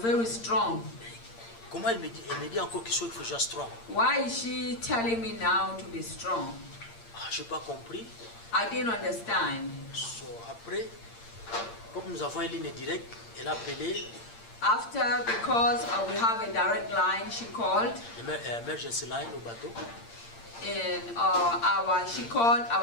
very strong. Comment elle me dit encore qu'il faut que je sois strong? Why is she telling me now to be strong? Je n'ai pas compris. I didn't understand. So, après, comme nous avons une ligne directe, elle a appelé After, because we have a direct line, she called. l'emergency line au bateau. And she called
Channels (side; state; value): right; late; 8.7 ms